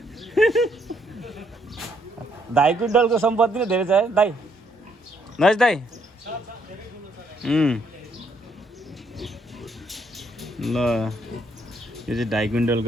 2.5 क्विन्टलको सम्पत्ति नै धेरै छ है दाइ। नज दाइ ल यो चाहिँ 2.5 क्विन्टलको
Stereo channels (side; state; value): both; normal; correlation 0.71